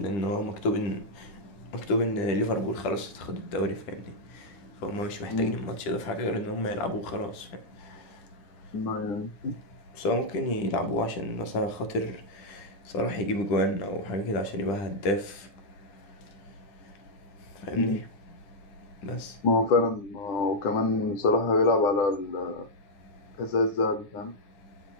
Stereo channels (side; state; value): right; late; 10 ms